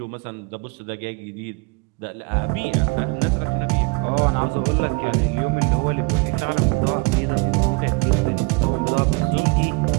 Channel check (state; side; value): quieter; left; 28.4 dB